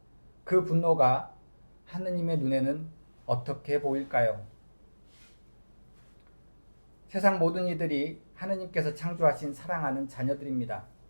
그 분노가 하느님의 눈에는 어떻게 보일까요? 세상 모든 이들이 하느님께서 창조하신 사랑하는 자녀들입니다.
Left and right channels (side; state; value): both; inverted; correlation -1.00